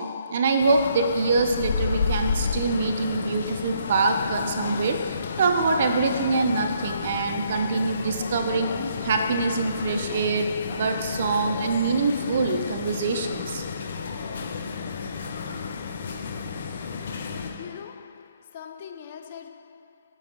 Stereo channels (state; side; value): inverted; both; correlation -0.69